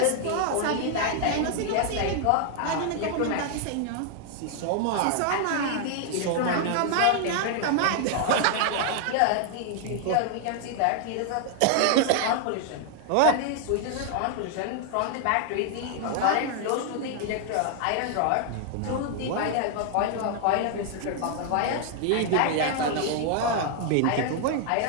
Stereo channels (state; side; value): different; both; correlation 0.00